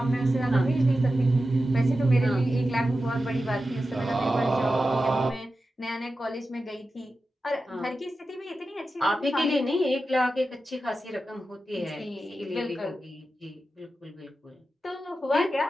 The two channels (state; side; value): normal; both; correlation 0.92